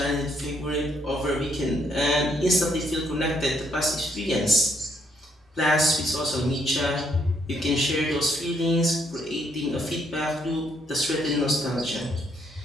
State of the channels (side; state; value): both; normal; correlation 0.71